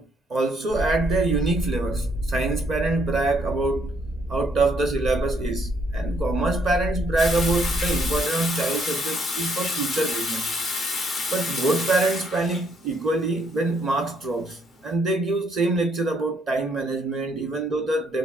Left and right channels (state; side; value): normal; both; correlation 0.70